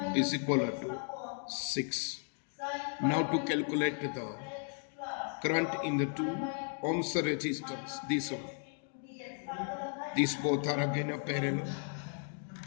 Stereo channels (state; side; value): silent; right; 54 dB below the other